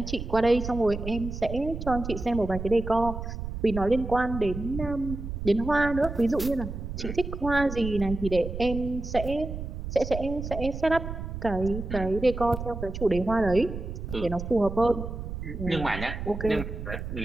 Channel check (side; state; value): right; noise; rumble, 7 dB below the sound